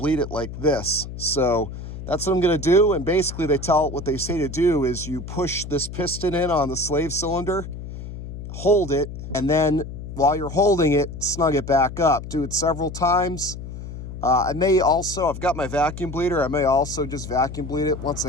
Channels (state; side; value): noise; left; hum, 10 dB below the sound